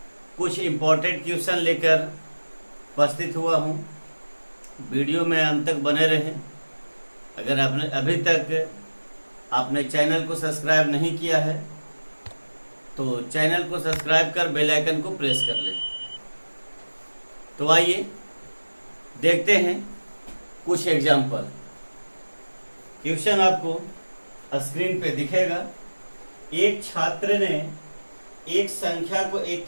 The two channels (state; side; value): inverted; both; correlation -1.00